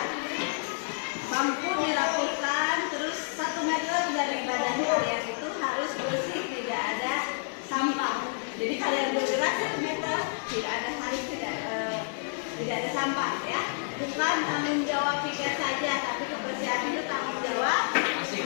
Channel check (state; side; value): silent; right; digital silence